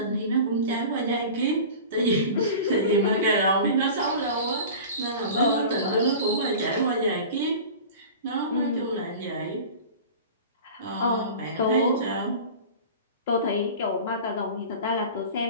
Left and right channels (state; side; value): inverted; both; correlation -0.36